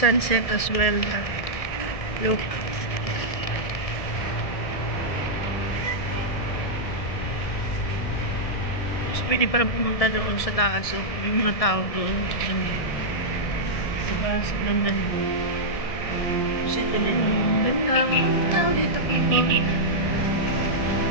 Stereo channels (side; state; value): right; late; 1.7 ms